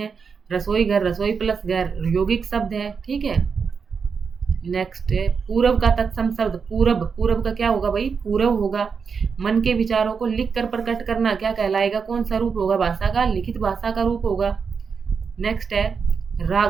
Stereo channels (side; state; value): left; quieter; 5.8 dB